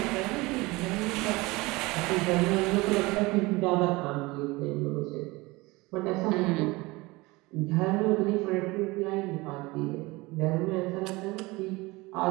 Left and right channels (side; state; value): left; quieter; 22.5 dB